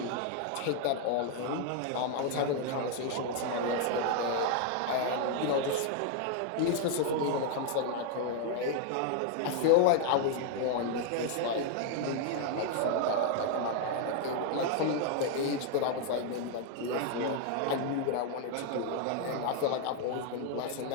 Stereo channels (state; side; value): different; both; correlation 0.00